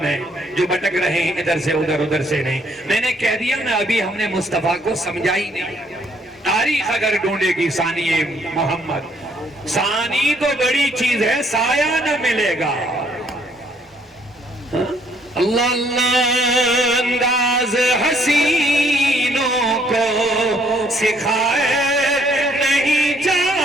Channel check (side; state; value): both; normal; correlation 0.66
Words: ہے جو بھٹک رہے ہیں ادھر سے ادھر، ادھر سے نہیں. میں نے کہہ دیا نا، ابھی ہم نے مصطفیٰ کو سمجھا ہی نہیں. تاریخ اگر ڈھونڈے گی ثانی محمد، ثانی تو بڑی چیز ہے، سایہ نہ ملے گا. اللہ اللہ انداز حسینوں کو سکھائے نہیں